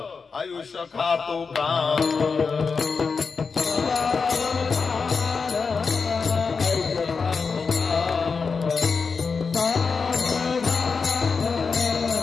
आयुष्य खातो का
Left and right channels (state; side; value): quieter; right; 5.0 dB